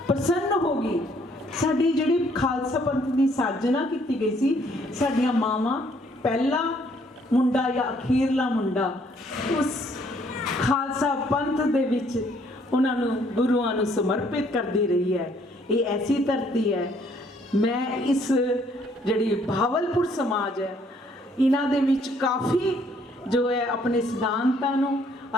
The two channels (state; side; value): normal; both; correlation 0.65